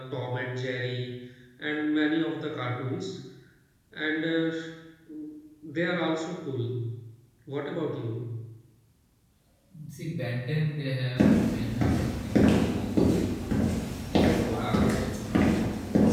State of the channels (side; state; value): both; identical; correlation 1.00